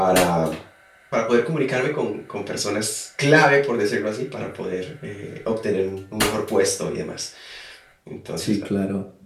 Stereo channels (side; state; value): both; identical; correlation 1.00